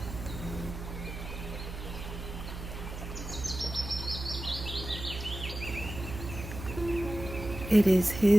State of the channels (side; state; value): right; noise; hum, 8 dB below the sound